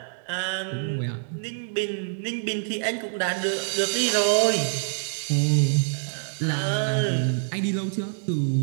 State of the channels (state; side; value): silent; left; digital silence